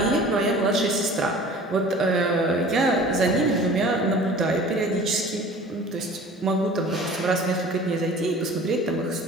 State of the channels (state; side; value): normal; both; correlation 0.44